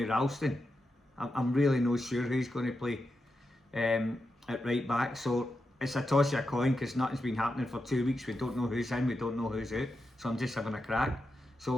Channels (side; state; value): both; normal; correlation 0.88